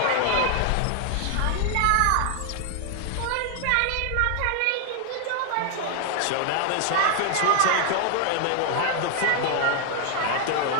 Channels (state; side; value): different; both; correlation 0.00